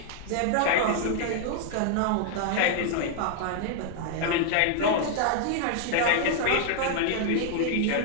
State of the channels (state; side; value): different; both; correlation 0.00